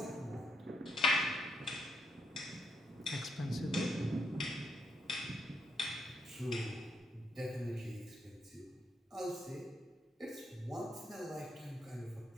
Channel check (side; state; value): both; normal; correlation 0.77